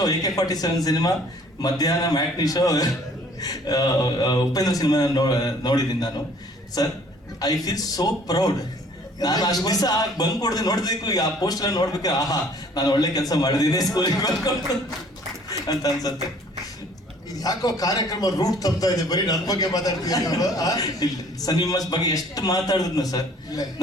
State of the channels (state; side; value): normal; both; correlation 0.55